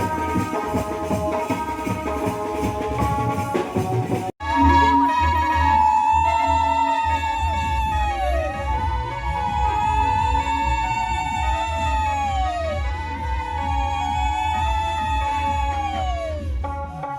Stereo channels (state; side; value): identical; both; correlation 1.00